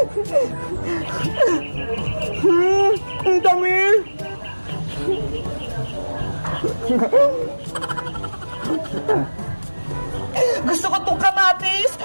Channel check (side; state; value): both; inverted; correlation -1.00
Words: Ang dami! Gusto ko tong kamatis!